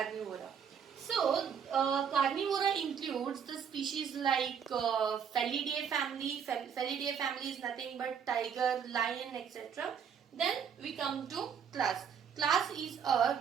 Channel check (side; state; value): left; quieter; 7.4 dB